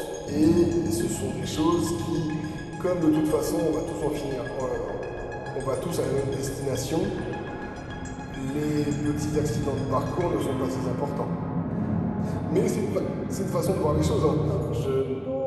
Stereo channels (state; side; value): identical; both; correlation 1.00